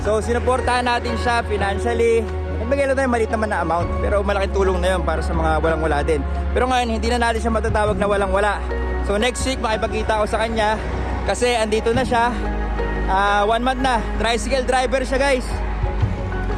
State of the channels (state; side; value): identical; both; correlation 1.00